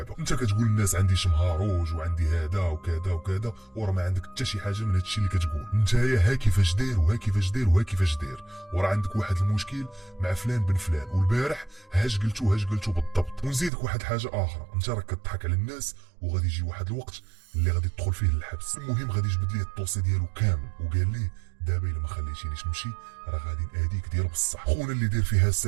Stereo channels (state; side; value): drops out; left; at 13.7 s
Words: انت كتقول للناس عندي شمهاروج وعندي هذا وكذا وكذا، وراه ما عندك حتى شي حاجه من هادشي اللي كتقول. نتايا ها كيفاش داير وها كيفاش داير وها كيفاش داير، وراه عندك واحد المشكل مع فلان بن فلان، والبارح هاش قلتو بالضبط. ونزيدك واحد حاجه اخرى، انت راك كتضحك على الناس وغادي يجي واحد الوقت اللي غادي تدخل فيه للحبس. المهم غادي يجبد ليه الطوسي ديالو كامل وقال ليه دابا الا ما خليتينيش نمشي راه غادي ناديك ديال بصح. خونا اللي داير فيها